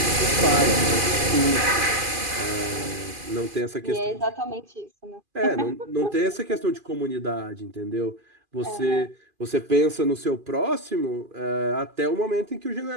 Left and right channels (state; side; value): late; left; 2.4 ms